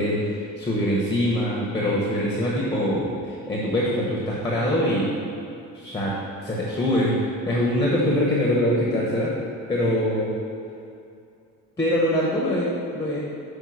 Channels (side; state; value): both; normal; correlation 0.34